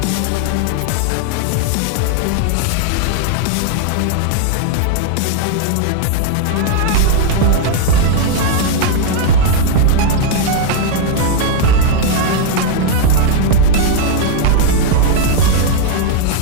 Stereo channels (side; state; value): both; different; correlation 0.00